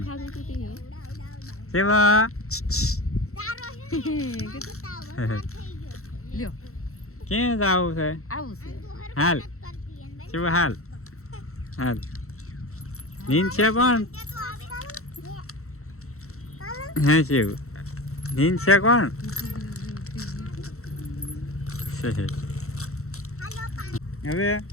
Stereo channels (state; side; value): late; right; 0.63 ms